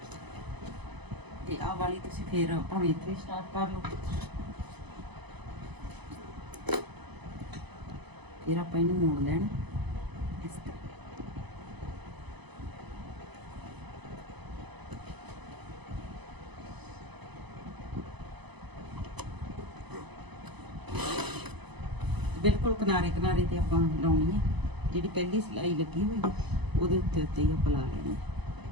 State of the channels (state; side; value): late; left; 0.99 ms